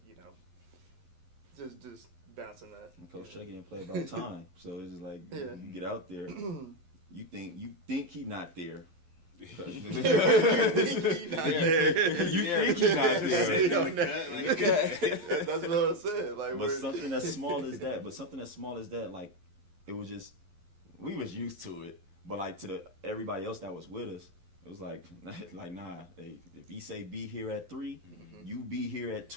just bouncing that. And Coach Chucky didn't play about time, so it's just like, you get out there, you think he not there. You think he not there. That's what I said. Like, but something as small as that, like, it was just, we was used to it. But like, to everybody else that was with us, it was like nah. If he say be here at 3, you be here at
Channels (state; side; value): late; left; 12 ms